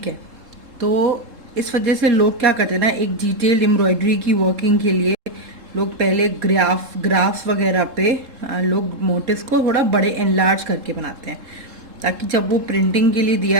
है। तो इस वजह से लोग क्या करते हैं ना, एक डिटेल्ड एम्ब्रॉयडरी की वर्किंग के लिए लोग पहले ग्राफ वगैरह पे लोग मोटिव्स को थोड़ा बड़े एनलार्ज करके बनाते हैं, ताकि जब वो प्रिंटिंग के लिए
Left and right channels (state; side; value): late; left; 3.7 ms